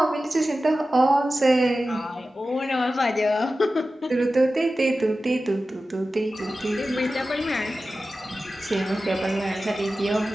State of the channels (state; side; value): normal; both; correlation 0.94